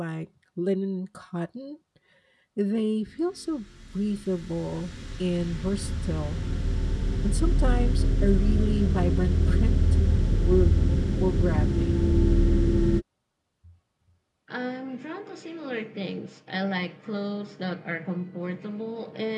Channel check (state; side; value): identical; both; correlation 1.00